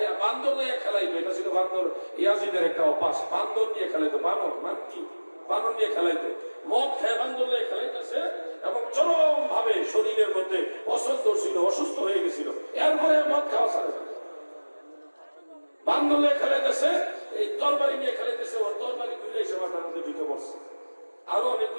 বান্দর নিয়ে খেলাইতো। এটা ছিল বান্দর, ইয়াজিদের একটা অভ্যাস, বান্দর নিয়ে খেলাইতো। বানর মান কি, বানর নিয়ে খেলাইতো। মদ খেয়ে বান্দর নিয়ে খেলাইতেছে এবং চরম ভাবে শরীরের মধ্যে অসুস্থ ছিল, অসুস্থ হয়ে গেছিল। এরপরে মদ খাওয়া ছাড়ে, বান্দর নিয়ে খেলাইতেছে, এই তরবারি নিয়ে খেলাইতেছে, ওর তরবারি ঘুরে এসে মাথার মধ্যে ঢুকে পড়ছে। আরো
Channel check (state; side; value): inverted; both; correlation -1.00